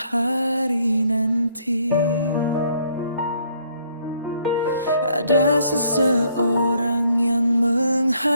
nanti ada seseorang yang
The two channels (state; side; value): inverted; both; correlation -0.66